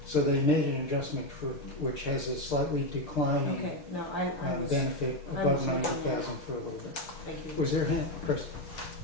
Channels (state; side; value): late; right; 6.4 ms